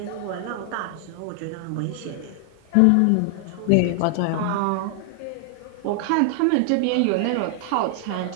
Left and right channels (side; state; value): both; different; correlation 0.00